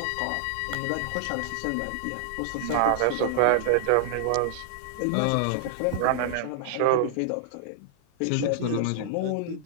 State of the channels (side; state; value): both; different; correlation -0.01